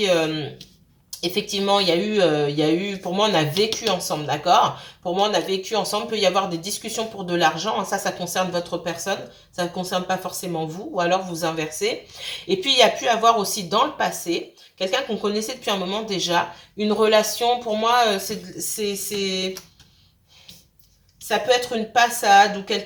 effectivement, il y a eu, pour moi, on a vécu ensemble, d'accord? Pour moi, on a vécu ensemble. Il peut y avoir des discussions pour de l'argent. Ça concerne votre personne. Ça ne concerne pas forcément vous, ou alors vous inversez. Et puis, il y a pu avoir aussi dans le passé, quelqu'un qu'on connaissait depuis un moment déjà, une relation, pour moi, ça peut être une passade ou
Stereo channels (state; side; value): identical; both; correlation 1.00